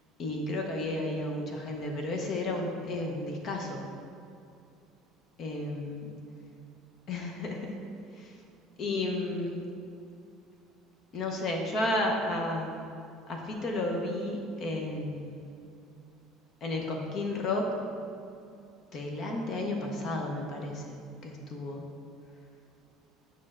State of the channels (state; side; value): normal; both; correlation 0.48